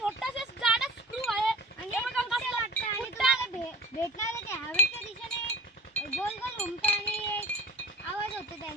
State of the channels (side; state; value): both; normal; correlation 0.42